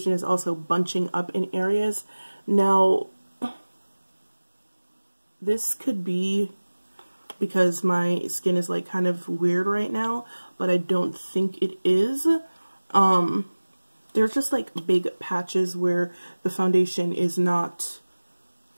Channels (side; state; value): both; inverted; correlation -1.00